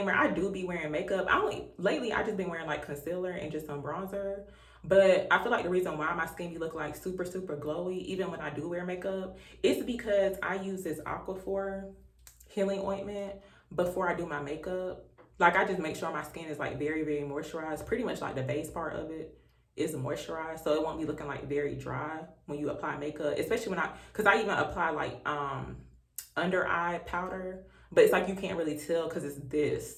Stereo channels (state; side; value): identical; both; correlation 1.00